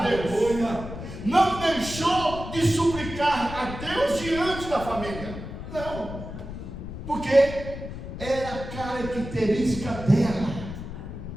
Deus, não deixou de suplicar a Deus diante da família. Não, porque era a característica dela,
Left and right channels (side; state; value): left; noise; rumble, 9 dB below the sound